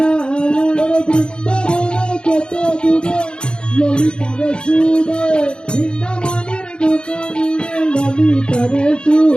বৃন্দাবনে কত দূরে ললিতারে সুরে বৃন্দাবনের দোকানে ললিতারে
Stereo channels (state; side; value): late; right; 0.052 ms